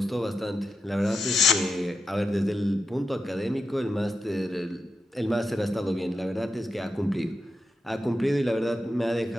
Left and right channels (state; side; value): normal; both; correlation 0.87